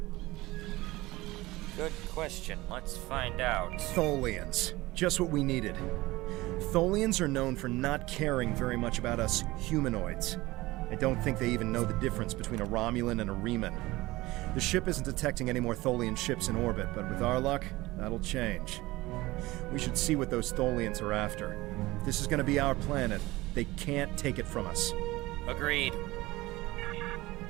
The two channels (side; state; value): left; quieter; 19.7 dB